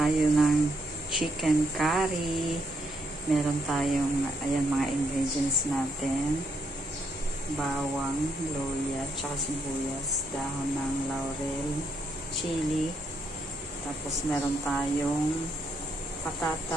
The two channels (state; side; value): normal; both; correlation 0.76